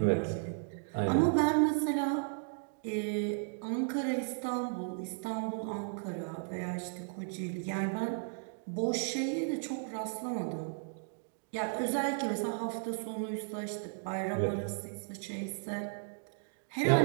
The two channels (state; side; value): silent; left; digital silence